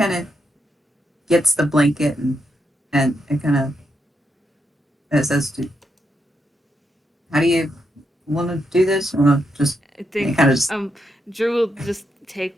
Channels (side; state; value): both; normal; correlation 0.82